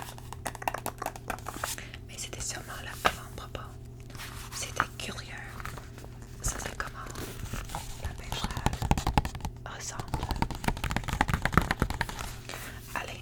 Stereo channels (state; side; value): identical; both; correlation 1.00